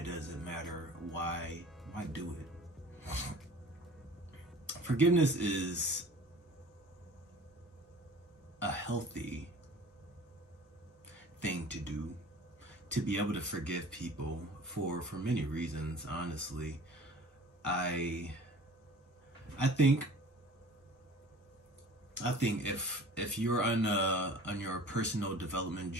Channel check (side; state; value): both; normal; correlation 0.44